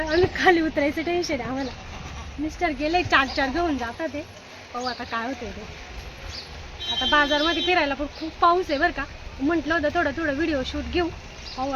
आम्ही खाली उतरायचं टेन्शन आहे आम्हाला. मिस्टर गेले 4 घेऊन जातात ते. पाहू आता काय होते ते. आता बाजारमध्ये फिरायला पण खूप पाऊस आहे बरं का. म्हटलं होतं थोडं व्हिडिओ शूट घेऊ. पाहू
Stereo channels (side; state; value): both; identical; correlation 1.00